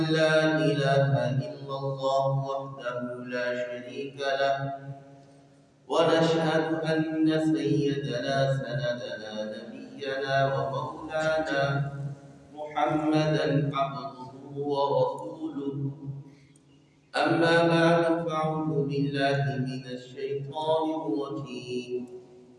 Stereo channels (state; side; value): identical; both; correlation 1.00